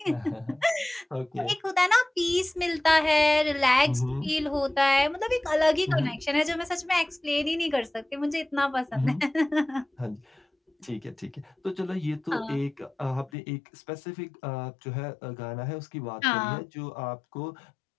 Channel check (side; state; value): right; drops out; at 13.3 s